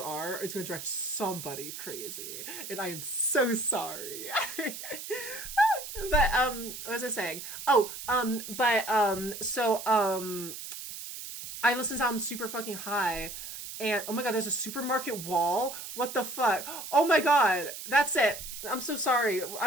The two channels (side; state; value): right; noise; hiss, 9 dB below the sound